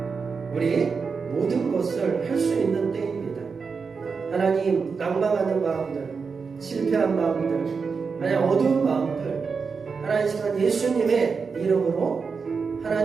우리 모든 것을 할 수 있는 때입니다. 하나님, 낭망하는 마음들, 실패한 마음들, 하나님 어두운 마음들, 하나님 시간 예수님의 이름으로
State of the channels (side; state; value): left; quieter; 5.2 dB